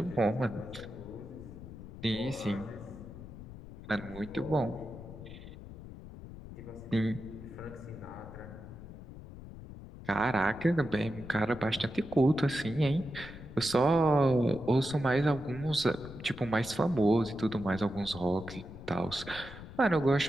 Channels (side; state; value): left; noise; rumble, 14 dB below the sound